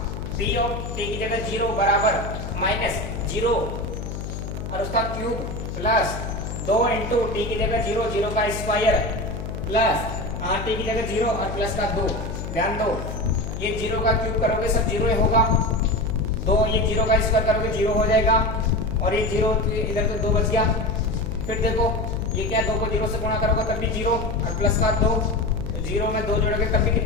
p ऑफ t की जगह 0 बराबर माइनस 0 और उसका क्यूब प्लस 2 इंटू टी की जगह 0, 0 का स्क्वायर प्लस टी की जगह 0 और प्लस का 2। ध्यान दो ये 0 का क्यूब करोगे सब 0 ही होगा, 2 ये 0 का स्क्वायर करोगे 0 हो जाएगा, और ये 0 इधर तो 2 बच गया। फिर देखो ये क्या, 2 को 0 से गुणा करोगे तब भी 0 और प्लस का 2, 0 में 2 जोड़ोगे तब भी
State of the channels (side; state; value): left; noise; hum, 7 dB below the sound